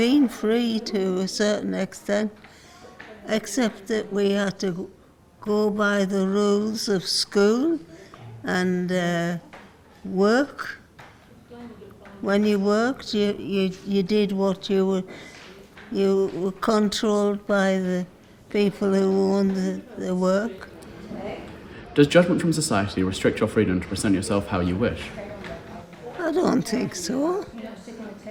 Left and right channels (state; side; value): identical; both; correlation 1.00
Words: free to a certain extent, except that we had to go by the rules of school and work. When you worked, you did what you were controlled by the people who owned the work. Does judgment from society restrict your freedom to present yourself how you wish? I don't think so.